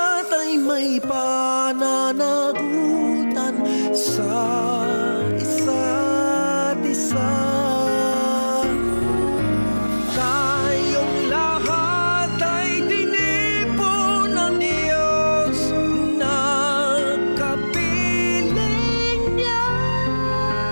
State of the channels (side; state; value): both; inverted; correlation -1.00